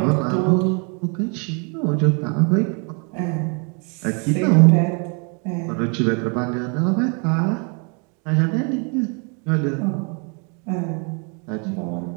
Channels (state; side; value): quieter; left; 36.0 dB